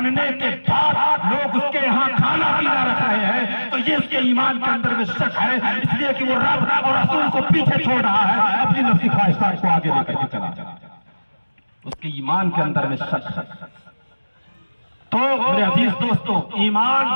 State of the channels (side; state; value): both; inverted; correlation -1.00